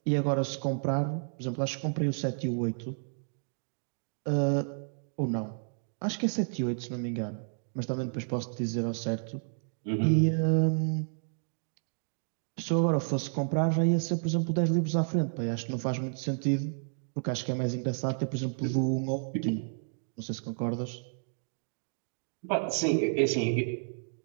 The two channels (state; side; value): silent; left; digital silence